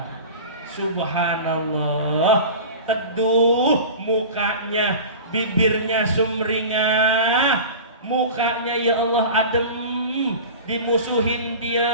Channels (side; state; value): both; inverted; correlation -0.34